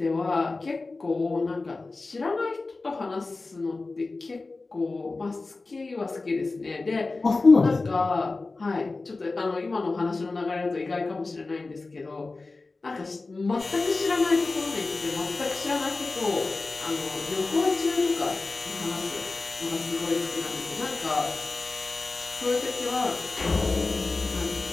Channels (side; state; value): right; quieter; 3.6 dB